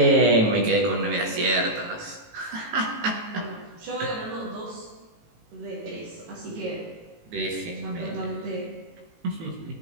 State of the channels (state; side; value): late; left; 18 ms